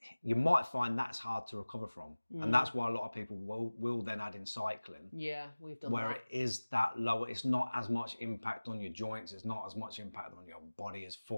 you might find that's hard to recover from. And that's why a lot of people will then add in cycling. Yeah, we've done where that. It is that lower, it's not as much impact on your joints, it's not as much impact on your body as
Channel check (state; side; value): inverted; both; correlation -1.00